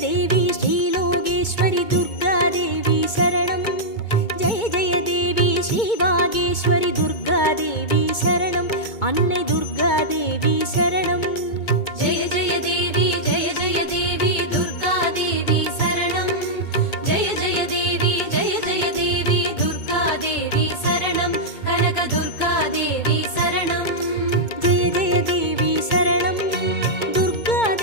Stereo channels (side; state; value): right; late; 2.2 ms